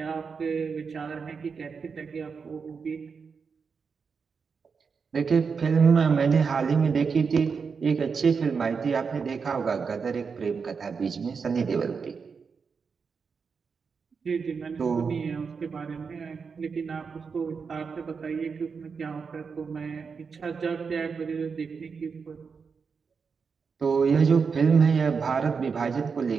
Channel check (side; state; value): left; quieter; 5.6 dB